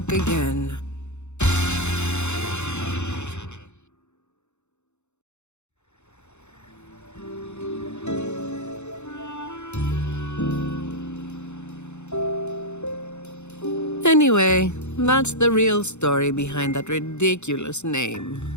again. Anyway, that's the real story behind that ridiculous name.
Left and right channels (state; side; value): late; right; 0.83 ms